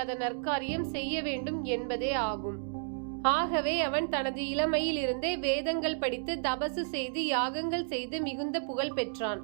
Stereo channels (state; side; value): silent; left; digital silence